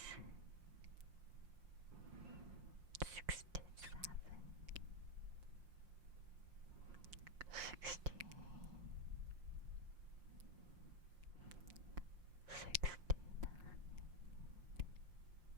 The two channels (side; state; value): left; late; 5.7 ms